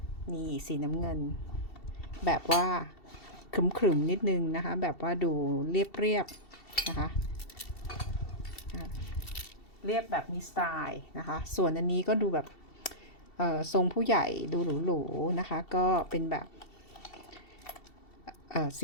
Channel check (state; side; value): late; right; 2.7 ms